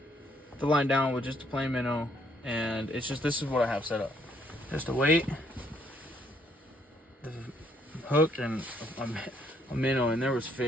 the line down with just a plain minnow, and it's just, this is what I have set up. Just a weight, the hook, and a minnow, and there was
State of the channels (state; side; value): normal; both; correlation 0.69